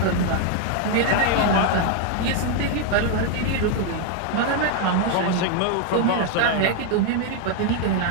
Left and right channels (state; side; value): different; both; correlation 0.00